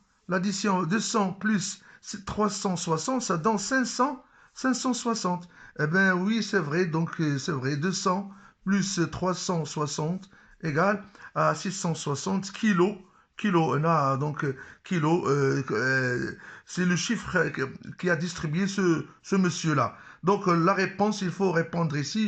200 plus 360, ça donne 560. Eh bien, oui, c'est vrai. Donc, c'est vrai. 200 plus 360 égale à 660 kilos Kilo, donc kilo, c'est le chiffre qui a distribué ce monsieur-là. Donc la réponse, il faut répondre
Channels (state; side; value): identical; both; correlation 1.00